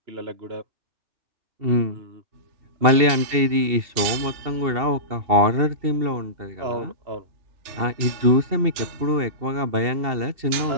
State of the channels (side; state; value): left; late; 2.7 ms